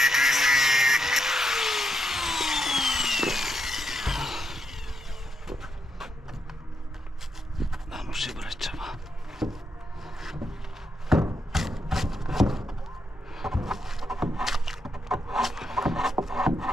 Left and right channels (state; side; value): normal; both; correlation 0.81